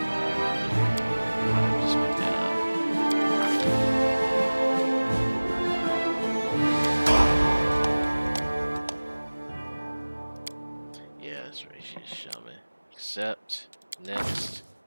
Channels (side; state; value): both; inverted; correlation -1.00